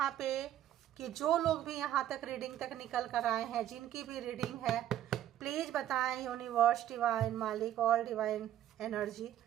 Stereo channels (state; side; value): quieter; left; 12.0 dB